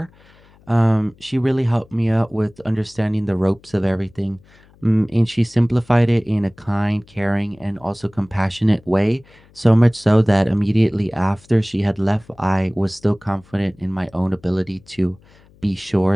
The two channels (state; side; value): noise; left; hum, 28 dB below the sound